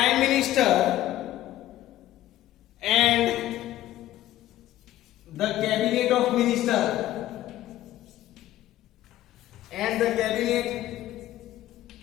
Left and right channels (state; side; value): quieter; right; 14.1 dB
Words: Minister and the Cabinet of Minister and the Cabinet